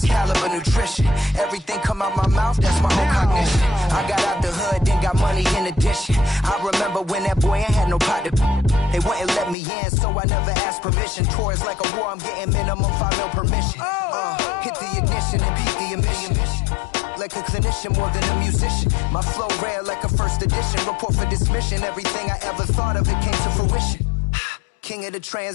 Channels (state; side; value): drops out; right; at 9.6 s